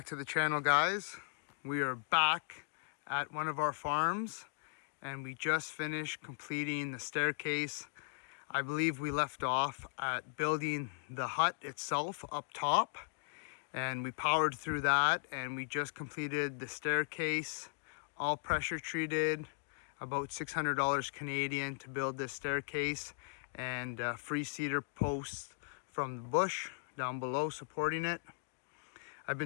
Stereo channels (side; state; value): right; silent; digital silence